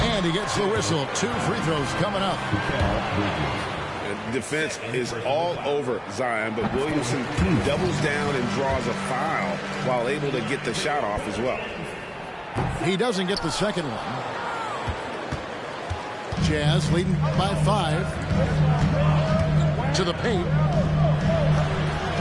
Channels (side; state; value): both; identical; correlation 1.00